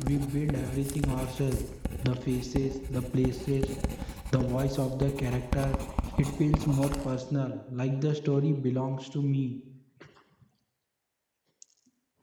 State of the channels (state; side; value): identical; both; correlation 1.00